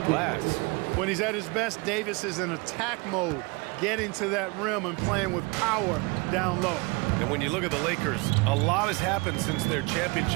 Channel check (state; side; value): quieter; left; 27.4 dB